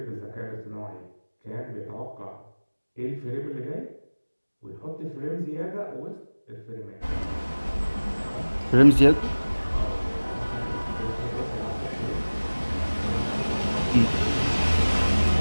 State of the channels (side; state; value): both; inverted; correlation -1.00